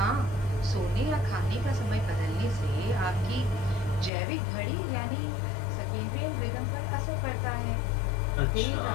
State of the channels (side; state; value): right; drops out; at 4.1 s